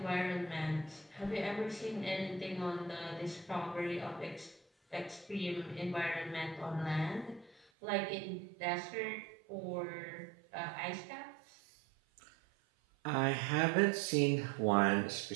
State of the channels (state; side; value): drops out; left; at 7.7 s